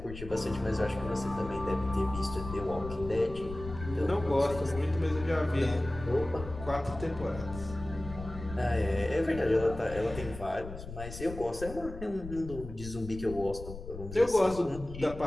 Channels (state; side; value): noise; left; rumble, 11 dB below the sound